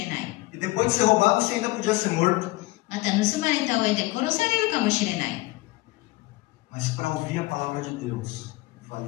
ない。 E depois de ser roubado, você ainda podia ser morto. また盗まれた上で殺されるかもしれない。 Mas para ouvir a palavra de Deus,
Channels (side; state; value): right; quieter; 20.6 dB